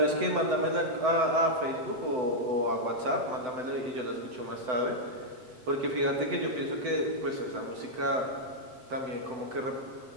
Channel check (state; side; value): late; left; 7.9 ms